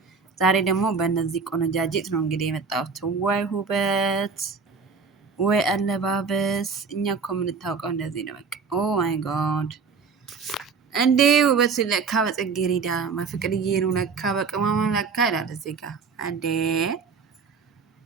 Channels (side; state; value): left; quieter; 5.3 dB